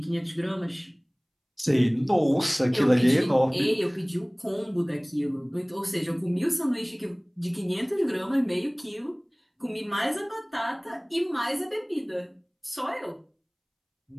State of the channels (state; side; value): identical; both; correlation 1.00